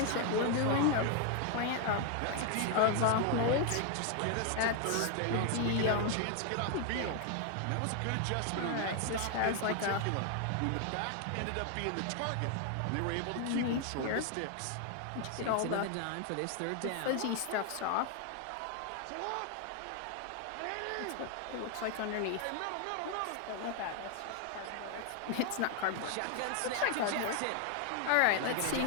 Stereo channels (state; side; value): different; both; correlation 0.00